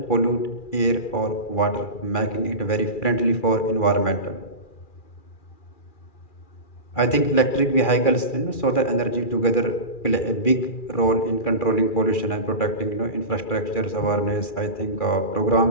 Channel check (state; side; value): late; right; 2.4 ms